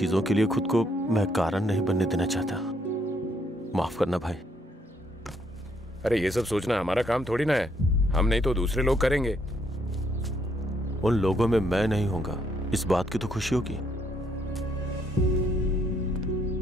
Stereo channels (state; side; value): normal; both; correlation 0.71